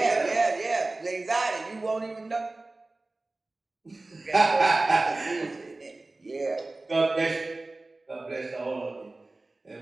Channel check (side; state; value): left; quieter; 3.1 dB